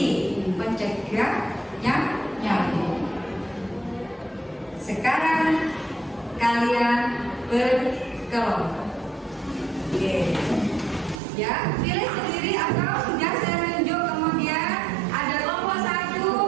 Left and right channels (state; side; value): drops out; left; at 11.2 s